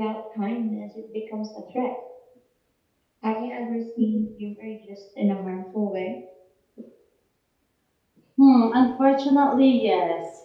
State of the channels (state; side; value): identical; both; correlation 1.00